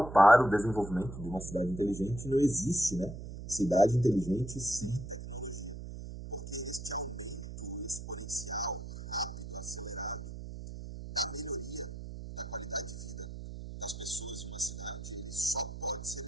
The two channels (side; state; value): right; noise; hum, 10 dB below the sound